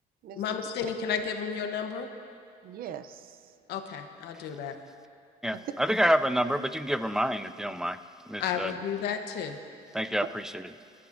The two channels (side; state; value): both; normal; correlation 0.71